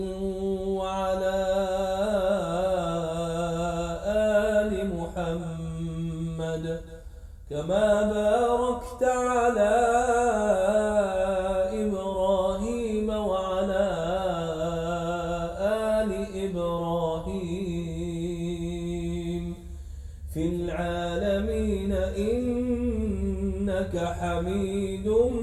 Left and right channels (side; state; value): both; identical; correlation 1.00